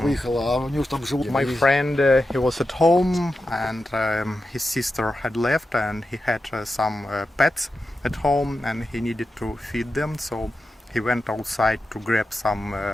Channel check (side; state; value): both; normal; correlation 0.90